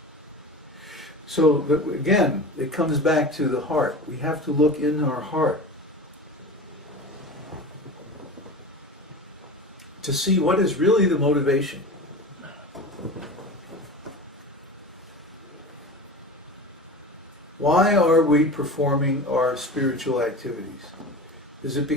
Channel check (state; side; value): normal; both; correlation 0.31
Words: So again, it comes back to the heart. We have to look in our heart to see what is really the motivation. Why are we performing our spiritual activities? Is it